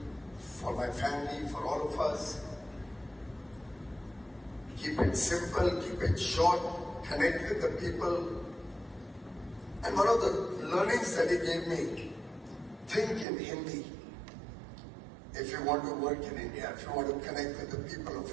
for my family, for all of us. Keep it simple, keep it short, connect with the people. And one of the learnings that he gave me, think in Hindi if you want to work in India, if you want to connect with the people of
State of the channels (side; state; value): left; drops out; at 13.2 s